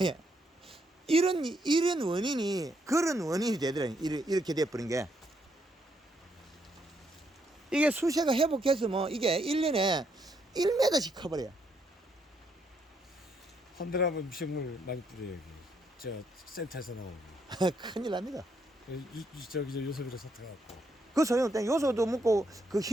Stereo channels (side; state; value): both; normal; correlation 0.75